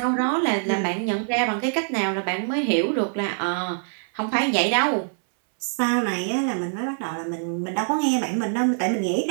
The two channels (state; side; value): silent; left; 62 dB below the other